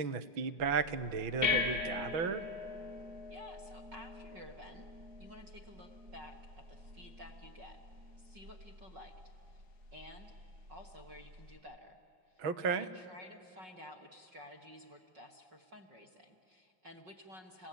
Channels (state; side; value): late; left; 5.4 ms